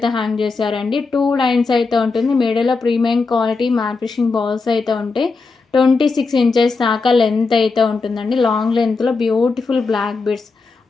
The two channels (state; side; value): quieter; right; 4.2 dB